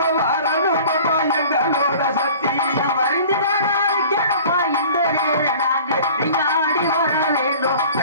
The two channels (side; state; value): both; inverted; correlation -0.45